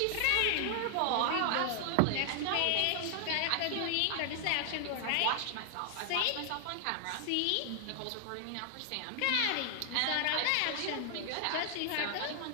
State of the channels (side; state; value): both; different; correlation 0.00